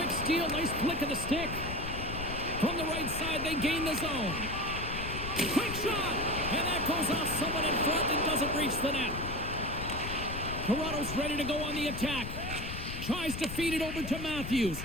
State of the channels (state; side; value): noise; left; rumble, 7 dB below the sound